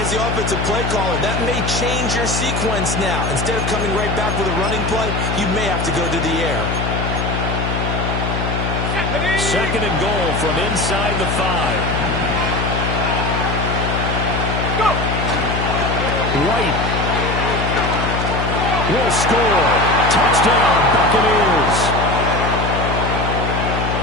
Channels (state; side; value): noise; left; hum, 1 dB below the sound